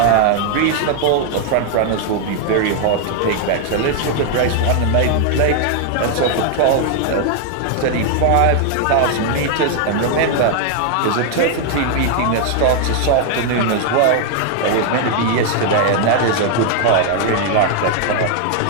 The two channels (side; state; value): both; different; correlation 0.00